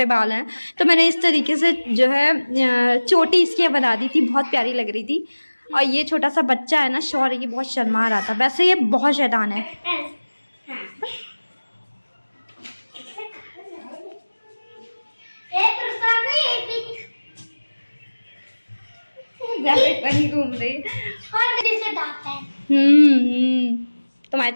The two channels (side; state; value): both; inverted; correlation -1.00